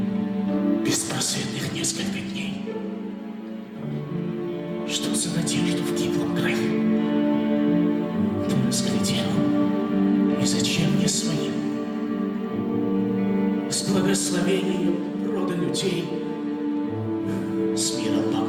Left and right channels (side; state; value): both; identical; correlation 1.00